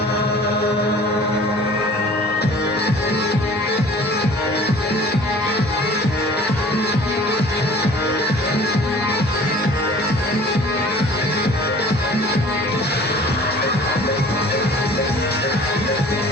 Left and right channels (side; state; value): both; normal; correlation 0.48